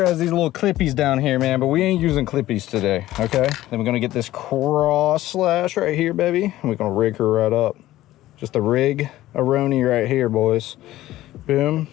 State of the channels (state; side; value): quieter; right; 15.3 dB